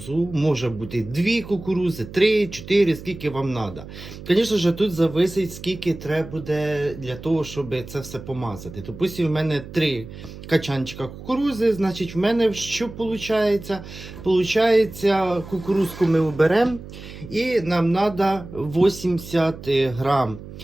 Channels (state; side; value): noise; right; hum, 14 dB below the sound